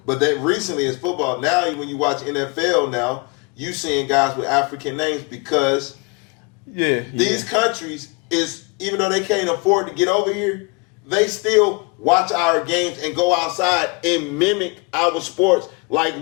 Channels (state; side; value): quieter; right; 30.0 dB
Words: But they recently it's football. Now when you watch NFL now, you seeing guys with African names because these countries is even though they can't afford to get over here, they still watch our games and go outside and mimic our sports like